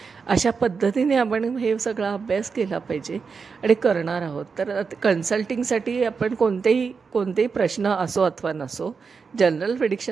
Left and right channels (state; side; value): quieter; left; 5.3 dB